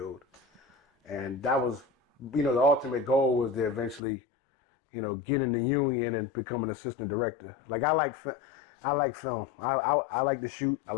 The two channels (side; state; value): right; drops out; at 4.0 s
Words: And that was, the ultimate goal was to eventually, get in the union and become an assistant director. Like I like film. I like to shoot. I